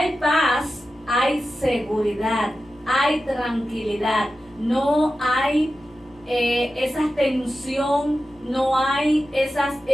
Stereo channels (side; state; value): left; noise; hum, 28 dB below the sound